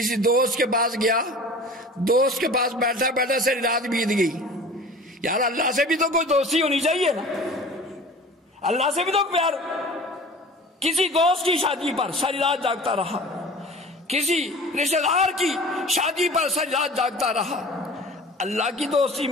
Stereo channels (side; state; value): both; normal; correlation 0.41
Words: دوست کے پاس گیا، دوست کے پاس بیٹھا بیٹھا سے رات بیت گئی، یار اللہ سے بھی تو کوئی دوستی ہونی چاہیے نا، اللہ سے بھی تو پیار۔ کسی دوست کی شادی پر ساری رات جاگتا رہا، کسی رشتہ دار کی شادی پر ساری رات جاگتا رہا، اللہ کی دوستی